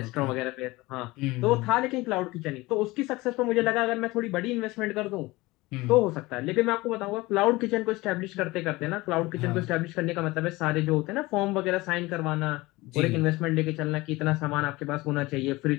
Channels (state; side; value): quieter; right; 21.0 dB